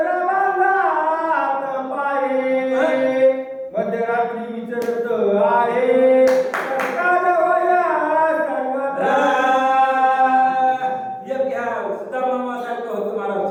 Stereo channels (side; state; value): both; identical; correlation 1.00